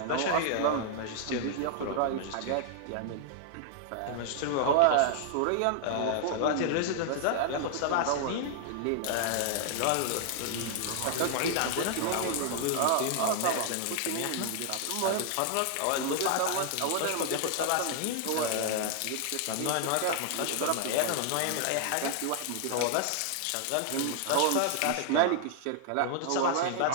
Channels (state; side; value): different; both; correlation 0.00